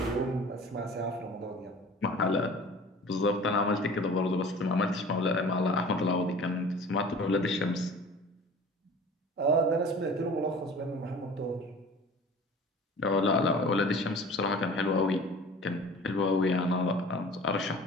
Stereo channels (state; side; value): normal; both; correlation 0.43